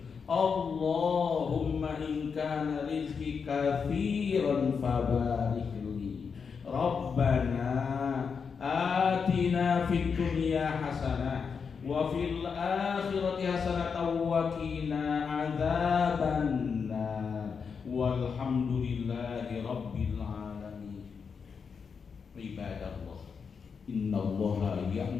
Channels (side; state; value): right; quieter; 5.9 dB